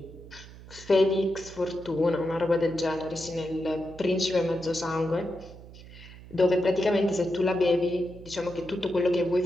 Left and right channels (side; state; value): right; noise; hum, 18 dB below the sound